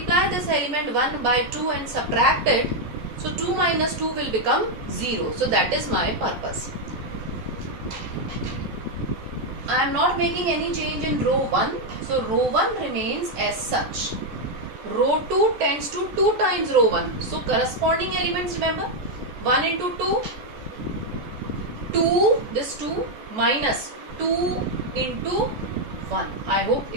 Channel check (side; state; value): left; late; 14 ms